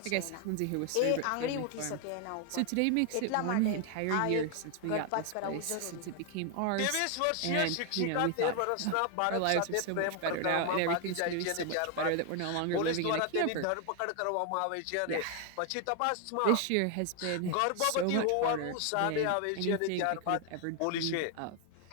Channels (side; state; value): both; different; correlation 0.00